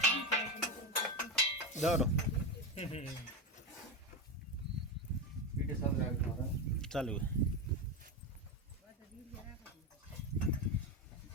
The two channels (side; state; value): both; normal; correlation 0.15